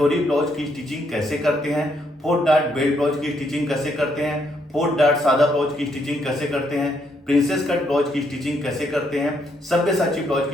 ब्लाउज की स्टिचिंग कैसे करते हैं, 4 डार्ट बेल्ट ब्लाउज की स्टिचिंग कैसे करते हैं, 4 डार्ट सादा ब्लाउज की स्टिचिंग कैसे करते हैं, प्रिंसेस कट ब्लाउज की स्टिचिंग कैसे करते हैं, सब्यसाची ब्लाउज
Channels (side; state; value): both; normal; correlation 0.74